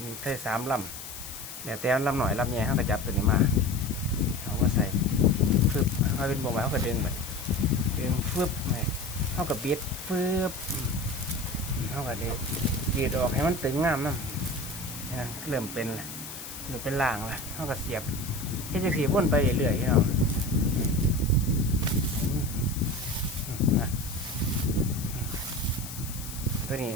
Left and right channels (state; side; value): noise; left; hiss, 11 dB below the sound